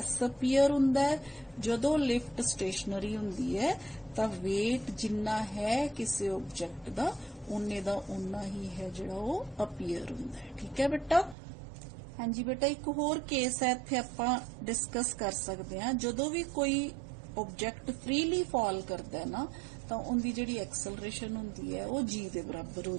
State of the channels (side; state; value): left; drops out; at 11.4 s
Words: अपीयर हुंदा है, जदों लिफ्ट स्टेशनरी हुंदी है तो वेट जिन्ना है किसी ऑब्जेक्ट का उन्ने दा उन्ना ही है जिहड़ा वो अपीयर हुंदा है। ठीक है बेटा, हाँ जी बेटा, एक होर केस है इत्थे आपां डिस्कस कर सकते हैं, जदों भी कोई ऑब्जेक्ट फ्रीली फॉल करता है ना तो उनकी जिहड़ी एक्सलरेशन हुंदी है वो जी दे बराबर हो